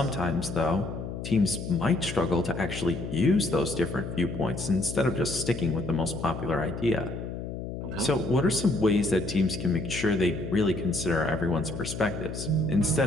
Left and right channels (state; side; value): noise; left; hum, 7 dB below the sound